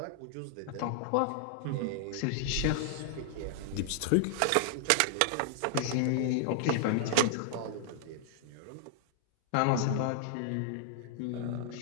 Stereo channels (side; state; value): both; different; correlation -0.01